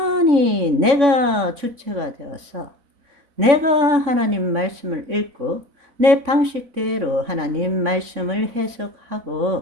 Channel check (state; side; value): late; left; 3.6 ms